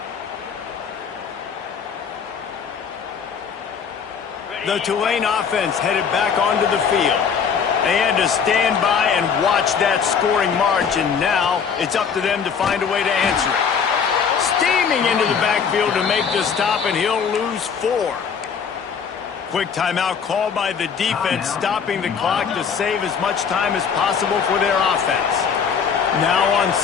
The Tulane offense headed back onto the field. They had to stand by and watch that scoring march, and now it's up to them to find a way to answer it. Steaming into the backfield to make the stop, and he'll lose 4. Quick timeout called by the defense, stopping the clock to save as much time as possible for their offense. Now on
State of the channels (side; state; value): right; quieter; 6.6 dB